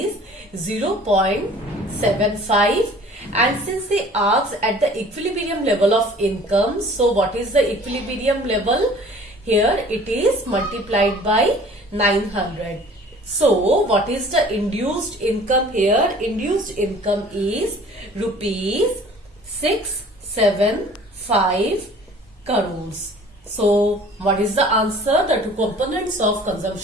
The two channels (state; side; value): normal; both; correlation 0.49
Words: 0.75. And since they asked at the equilibrium level of income, so what is the equilibrium level? Here it is multiplied by 900. So what is the induced income here? Induced income is rupees 675 crores. So what is the answer? The two components of